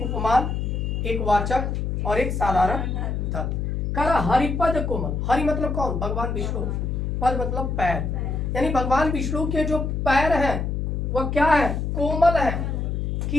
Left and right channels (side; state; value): left; noise; hum, 1 dB below the sound